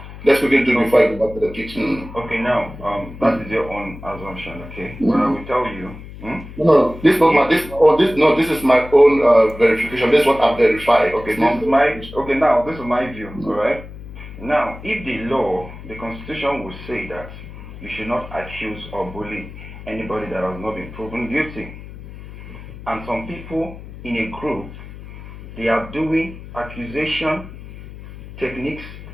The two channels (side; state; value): left; noise; hum, 14 dB below the sound